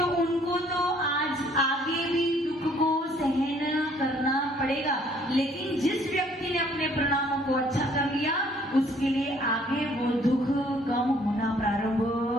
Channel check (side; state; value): both; normal; correlation 0.61